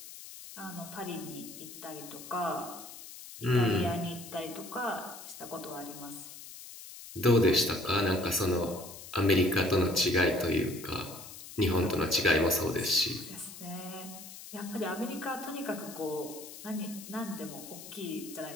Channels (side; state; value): left; noise; hiss, 14 dB below the sound